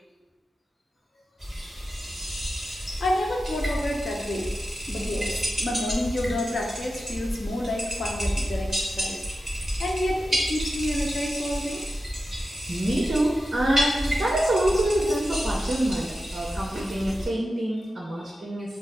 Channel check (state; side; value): normal; both; correlation 0.92